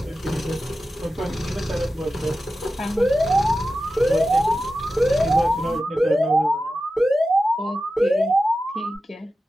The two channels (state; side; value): normal; both; correlation 0.93